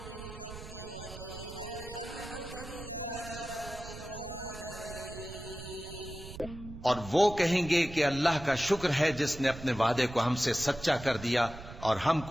بالحق وقيل الحمد لله رب العالمين। और वो कहेंगे कि अल्लाह का शुक्र है जिसने अपने वादे को हमसे सच्चा कर दिया और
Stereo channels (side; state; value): right; noise; rumble, 13 dB below the sound